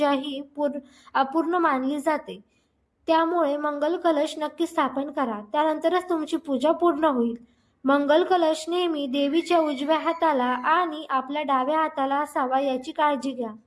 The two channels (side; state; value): both; identical; correlation 1.00